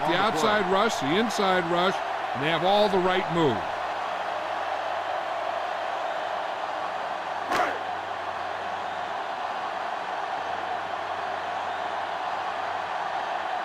the outside rush, the inside rush, and they have all the right moves.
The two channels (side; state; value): both; identical; correlation 1.00